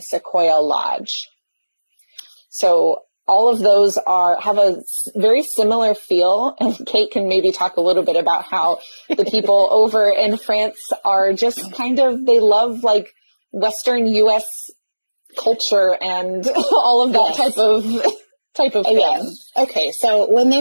Lodge. So all of those have a very similar feel, and Kate can maybe talk a little bit about how the people over in France are just kind of, they love like Western US culture and all of that type of thing. Yeah. Okay, so when they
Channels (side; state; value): both; inverted; correlation -1.00